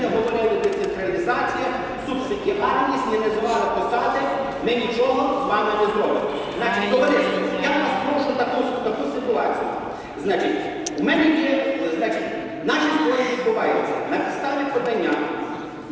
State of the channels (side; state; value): both; identical; correlation 1.00